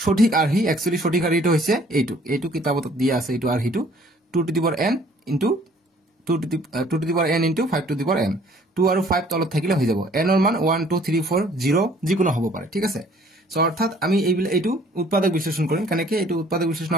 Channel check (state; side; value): normal; both; correlation 0.57